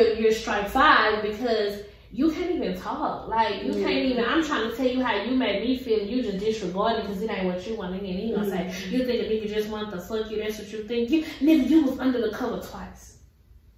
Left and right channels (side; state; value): both; identical; correlation 1.00